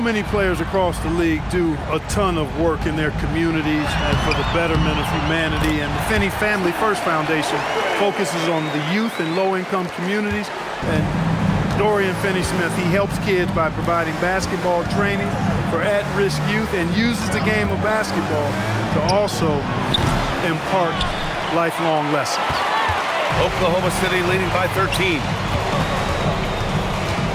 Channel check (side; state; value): both; identical; correlation 1.00